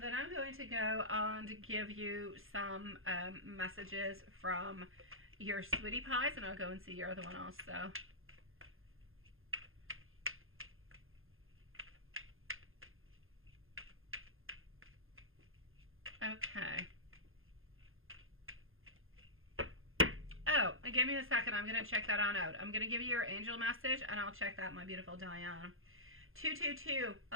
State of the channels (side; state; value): left; late; 0.60 ms